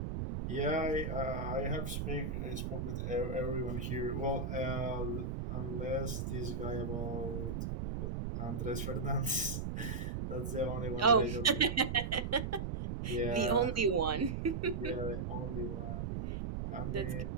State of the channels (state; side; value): noise; right; rumble, 2 dB below the sound